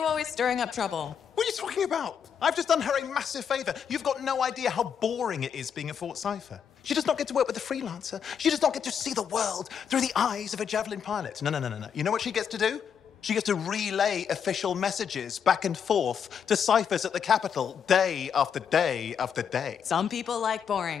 always stirring up trouble? What are you talking about? I've just done her a massive favor. You've got no idea how boring it is being a Fort Cipher. She does not get to work with a freelancer. She does not get to see the world through the eyes of a Javelin pilot. No. You know what she gets to do? She gets to relay official messages back and forth to ciphers at the Capitol day after day after day. Some people like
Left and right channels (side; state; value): right; quieter; 7.6 dB